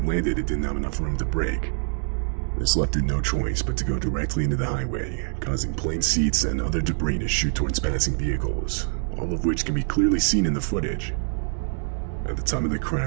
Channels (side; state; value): left; silent; digital silence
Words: landed it didn't have enough room to brake. This left it no choice but to go directly into the highway, causing plane seats and other debris to shoot towards passing vehicles, all of which can be clearly seen in the footage. At the time of the